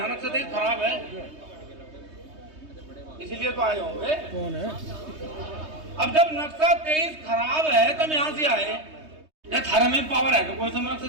नक्शा 23 खराब है, इसीलिए तो आए होंगे। कौन है? अब जब नक्शा 23 खराब है तुम यहाँ से आए, या थारे में पावर है कि कोई समय नक्शा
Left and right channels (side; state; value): left; late; 3.2 ms